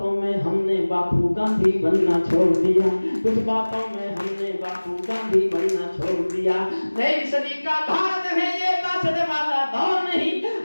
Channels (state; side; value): inverted; both; correlation -1.00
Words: में हमने बापू गांधी बनना छोड़ दिया, कुछ बातों में हमने बापू गांधी बनना छोड़ दिया। नई सदी का भारत है ये बासठ वाला दौर नहीं,